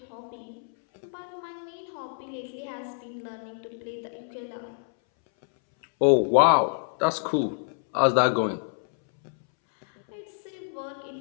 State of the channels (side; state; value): right; silent; 60 dB below the other